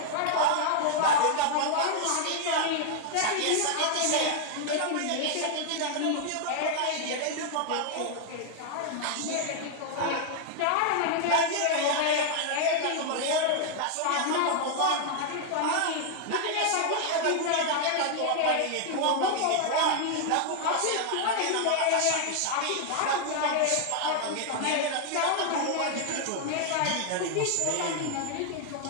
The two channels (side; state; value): both; different; correlation 0.00